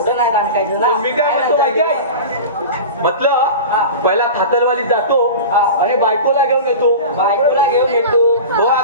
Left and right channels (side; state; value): both; inverted; correlation -0.31